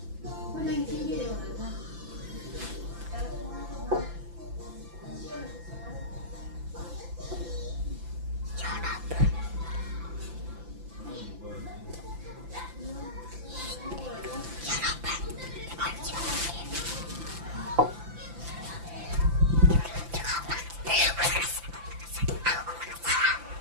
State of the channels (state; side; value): late; left; 5.9 ms